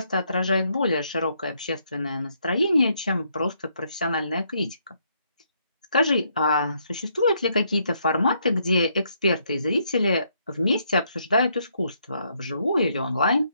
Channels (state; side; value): inverted; both; correlation -0.73